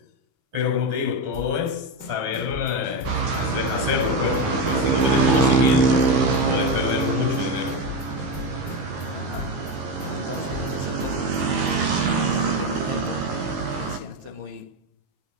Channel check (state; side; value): late; left; 15 ms